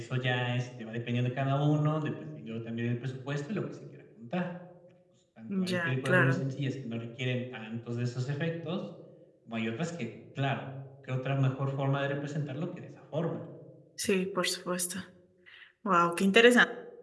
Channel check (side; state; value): both; identical; correlation 1.00